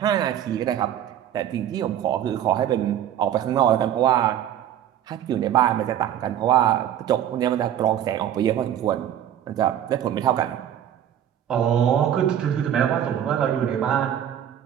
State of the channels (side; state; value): left; quieter; 10.5 dB